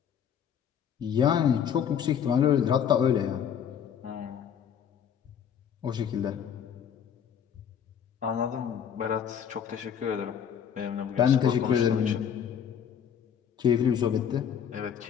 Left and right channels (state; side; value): quieter; right; 8.3 dB